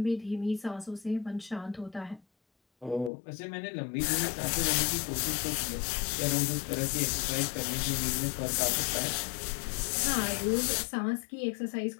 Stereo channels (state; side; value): drops out; right; at 3.1 s